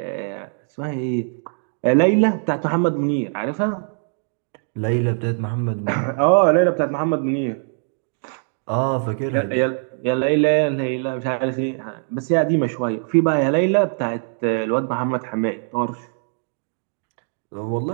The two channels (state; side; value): silent; left; 62 dB below the other